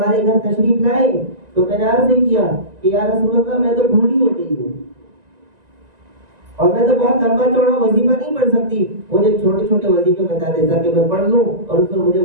گھر تشریف لائے تو میں نے عرض کیا کہ یا رسول اللہ میں تو بوڑھی ہو گئی ہوں اور میں تو بہت لمبا چوڑا وظیفہ نہیں پڑھ سکتی، مجھے چھوٹے چھوٹے وظیفے بتا دے تاکہ میں پڑھ لوں اور اس پر مجھے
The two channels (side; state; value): left; late; 1.9 ms